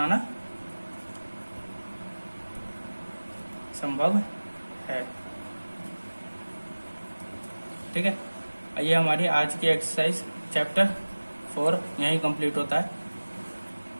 संभव है, ठीक है। ये हमारी आज की एक्सरसाइज चैप्टर 4 यहीं कंप्लीट होता है,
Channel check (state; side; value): inverted; both; correlation -1.00